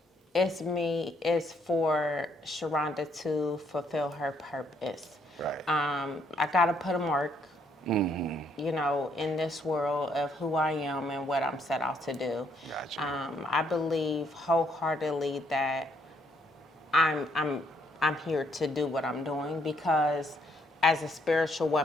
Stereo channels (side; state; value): both; normal; correlation 0.71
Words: is for Sharonda to fulfill her purpose. Right. I gotta put a mark, in this world of who I am and what I'm set out to do. Gotcha. I believe wholeheartedly that I'm here to do what I'm doing because as a spiritual